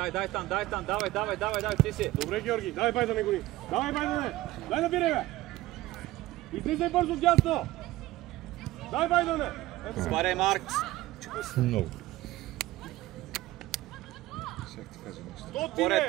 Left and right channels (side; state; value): left; quieter; 17.1 dB